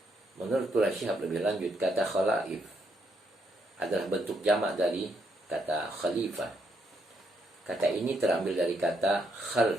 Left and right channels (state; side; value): normal; both; correlation 0.76